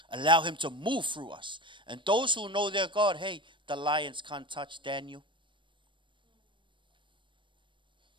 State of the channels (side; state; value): left; late; 0.24 ms